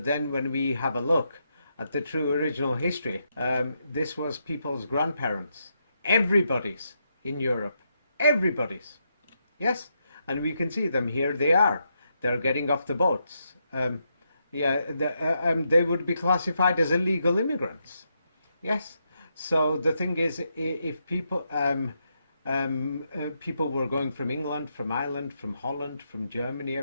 then when we have a look at the true original history, this was people's grandparents. Everybody's in Europe. Everybody's. Yes, and we can see them here. They are. They're getting off the boats. They would be classified as illegal immigrants. Yes. So the thing is, if people people were going from England, from Ireland, from Holland, from Germany,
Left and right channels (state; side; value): inverted; both; correlation -0.81